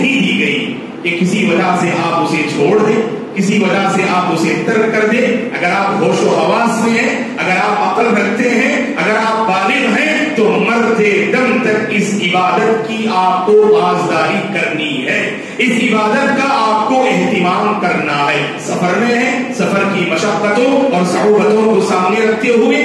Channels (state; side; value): identical; both; correlation 1.00